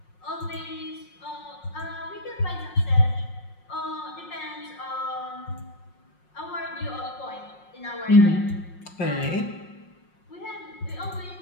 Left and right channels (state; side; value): late; right; 5.5 ms